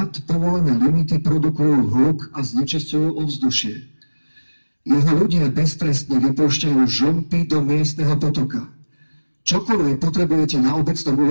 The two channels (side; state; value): both; inverted; correlation -1.00